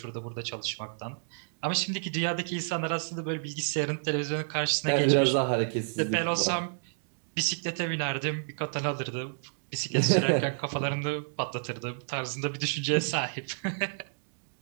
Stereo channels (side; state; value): left; silent; digital silence